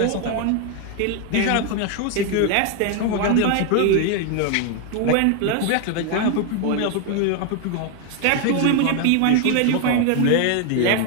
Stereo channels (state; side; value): different; both; correlation 0.01